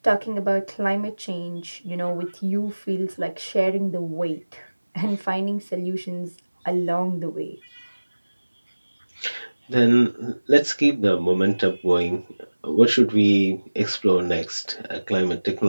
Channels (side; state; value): both; inverted; correlation -1.00